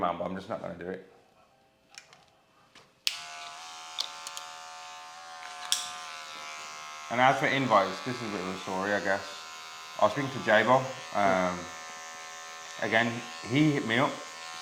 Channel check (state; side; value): identical; both; correlation 1.00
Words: but I'm just not going to do it. And as for invites, this is a bit of a story, I guess. I was speaking to J-Bo. Again, he hit me up